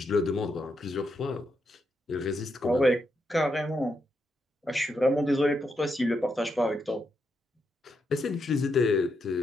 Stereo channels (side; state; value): both; normal; correlation 0.82